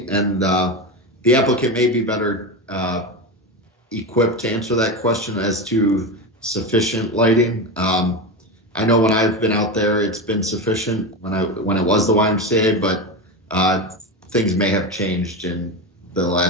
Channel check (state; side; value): normal; both; correlation 0.19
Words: and the applicant may be better equipped to answer that question as to sufficient lighting. I know when I've been out there, it's been sufficient when it was the YMCA, but things may have changed in the